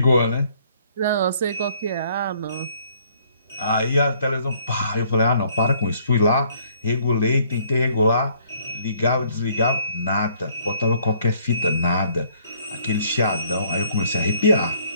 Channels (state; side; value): inverted; both; correlation -0.63